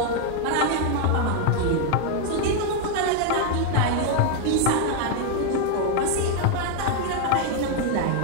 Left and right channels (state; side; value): different; both; correlation 0.01